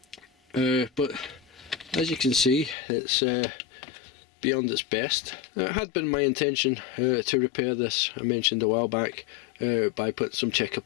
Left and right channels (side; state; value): right; drops out; at 2.8 s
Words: But as you can see, it's beyond its best. It had been my intention to repair this, I mentioned a while back, by putting some checker